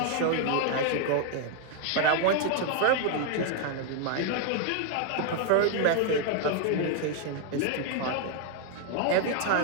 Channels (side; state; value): both; different; correlation 0.00